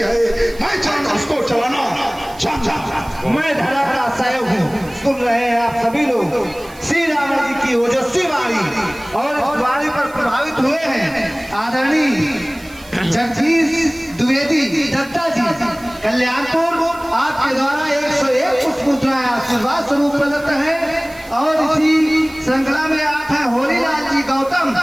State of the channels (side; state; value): right; noise; hiss, 23 dB below the sound